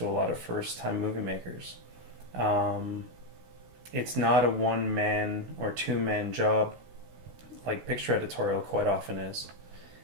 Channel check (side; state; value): left; late; 16 ms